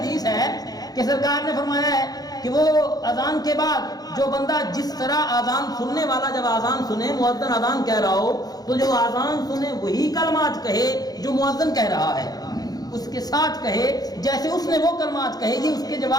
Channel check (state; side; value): late; right; 0.19 ms